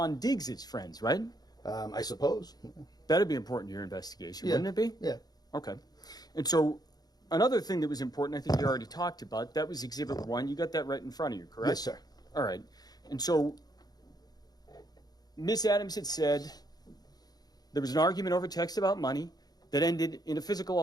Diggs' friends, right? I suppose. That'd be important to your investigation, wouldn't it be? Yeah. Okay. And so another thing that was important, I think you already talked about, that was Exhibit 1. You got that right in front of you, correct? Yes, sir. All right. And so Miss Adams had said there was an argument over text about money that ended in a physical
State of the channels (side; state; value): right; late; 0.19 ms